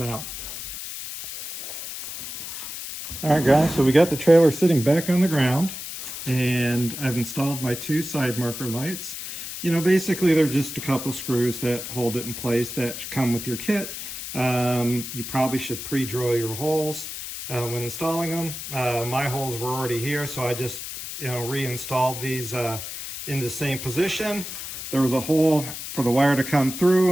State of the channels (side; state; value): left; noise; hiss, 8 dB below the sound